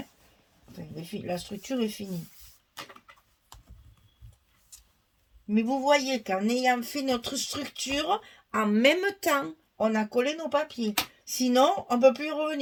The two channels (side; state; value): both; identical; correlation 1.00